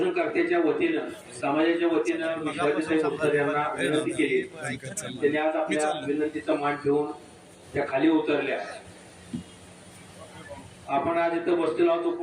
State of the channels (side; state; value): both; identical; correlation 1.00